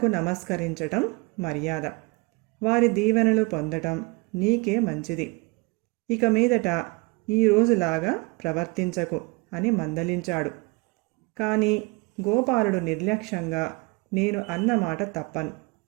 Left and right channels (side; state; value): left; quieter; 27.6 dB